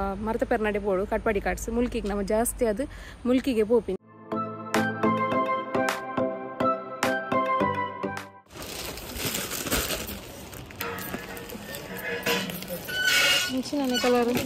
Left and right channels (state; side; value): identical; both; correlation 1.00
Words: ಮರತ ಪೆರ್ನಾಡೆ ಪೋಡು ಕಟ್ಪಾಡಿ ಕಾಟ್ಸ್ ಮುಲ್ಕಿಗೆ ನಮ್ಮ ಜಾಸ್ತಿ ಅದು ಮುಲ್ಕಿಗೆ ಪೋಪಿ ಇಂಚಿನ ಕಲರ್